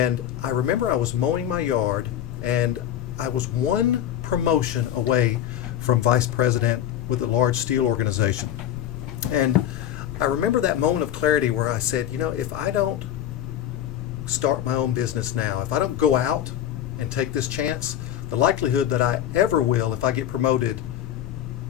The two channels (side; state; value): right; quieter; 11.0 dB